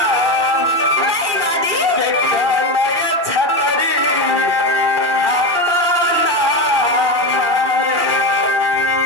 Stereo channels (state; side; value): late; left; 2.7 ms